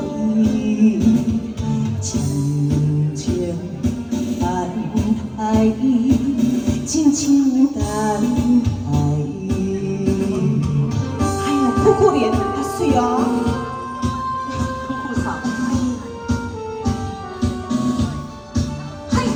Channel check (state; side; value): identical; both; correlation 1.00